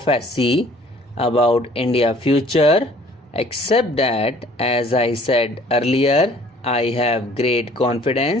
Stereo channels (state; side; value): normal; both; correlation 0.55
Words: about India future, except that, as I said earlier, I have great